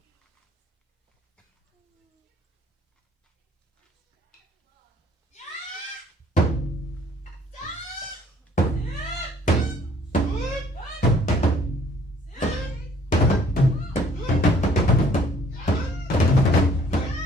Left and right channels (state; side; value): normal; both; correlation 0.59